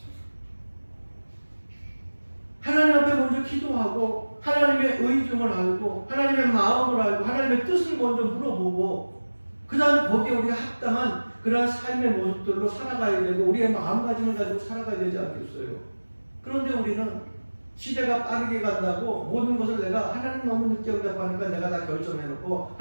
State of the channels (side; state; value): both; inverted; correlation -1.00